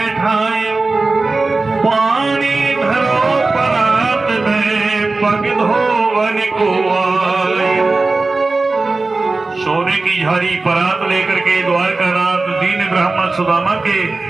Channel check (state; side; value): quieter; left; 3.5 dB